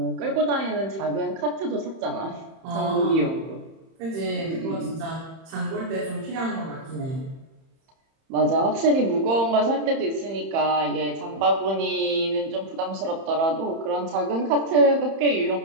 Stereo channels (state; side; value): late; left; 31 ms